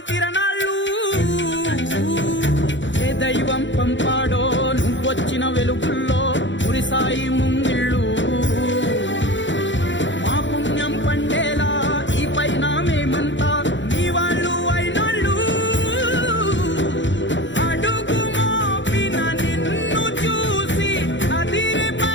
తిరణాళ్ళు. ఏ దైవం పంపాడో నువ్వొచ్చిన వెలుగుల్లో కురిసాయి ముంగిళ్ళు.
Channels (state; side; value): late; right; 0.54 ms